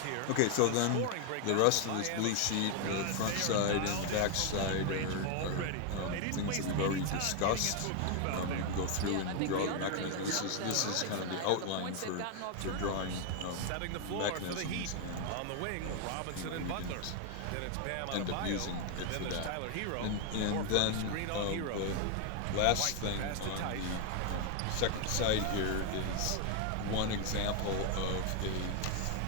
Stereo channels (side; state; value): both; different; correlation 0.00